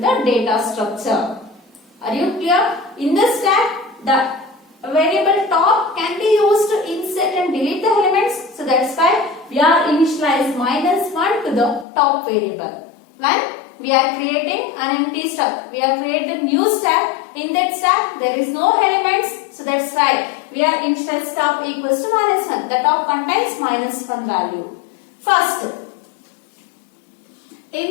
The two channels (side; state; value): right; drops out; at 11.9 s